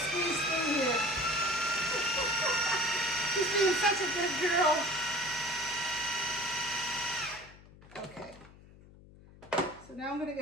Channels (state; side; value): noise; left; hum, 22 dB below the sound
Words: through here. She's being such a good girl. Okay. So now I'm gonna